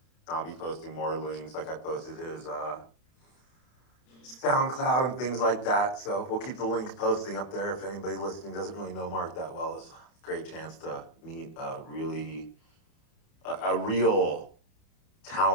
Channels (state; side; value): late; right; 31 ms